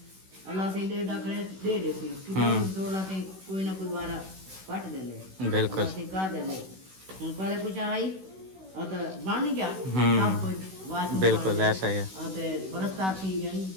से दे डा करे दे थी तो अल्लाह से कोई ना कोई बारा पट दे ले। बिल्कुल कर दे ले। हम पहले कुछ आई और तो बन गया सब कुछ। बिल्कुल ऐसा ही है। बरसता थी गई,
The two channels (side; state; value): left; late; 16 ms